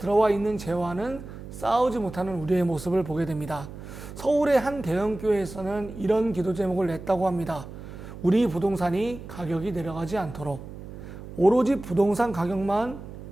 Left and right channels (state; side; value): noise; right; hum, 13 dB below the sound